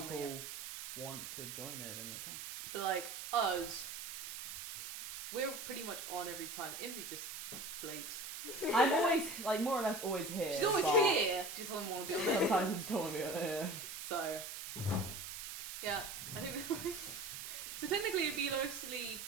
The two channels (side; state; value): right; noise; hiss, 8 dB below the sound